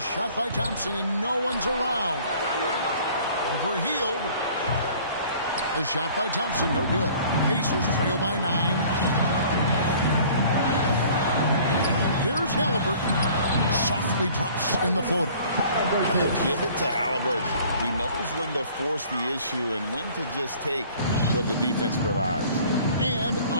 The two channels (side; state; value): both; inverted; correlation -0.51